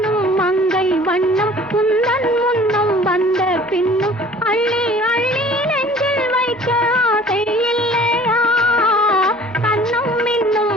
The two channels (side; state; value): both; normal; correlation 0.49